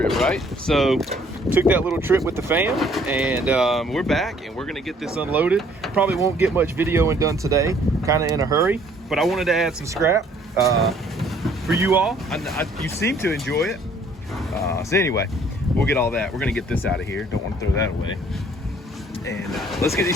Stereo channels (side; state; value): both; normal; correlation 0.60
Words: right? So took that little trip with the fam, and we're back, and we're gonna get this unloaded. Probably won't get much videoing done today. Kind of in a hurry, but I wanted to add some scrap for you all. You seem to enjoy it. So anyway, we'll get all that. We're gonna get this out of here. Don't want to throw that away. And let's get these